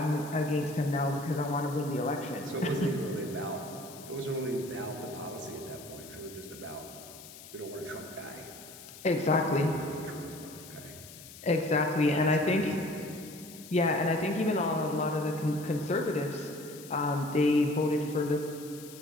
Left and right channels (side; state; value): left; noise; hiss, 17 dB below the sound